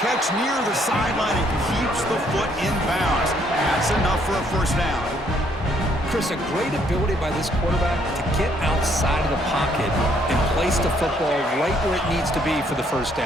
catch near the sideline and keeps the foot in bounds. That's enough for a first down. Chris, a great ability by this quarterback to get outside of the pocket and place the football right where it needs to be for the first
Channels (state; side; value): normal; both; correlation 0.68